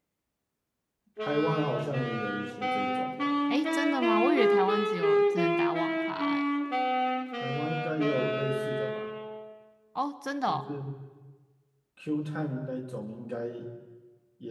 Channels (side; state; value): both; identical; correlation 1.00